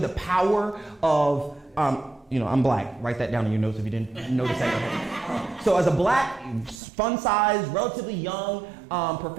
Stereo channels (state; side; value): drops out; left; at 6.8 s